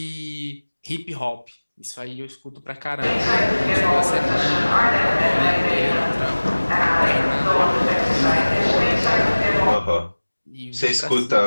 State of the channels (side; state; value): both; inverted; correlation -1.00